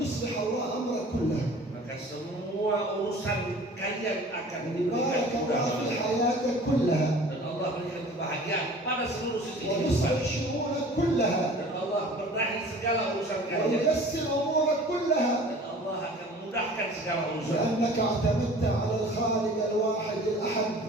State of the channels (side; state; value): both; normal; correlation 0.45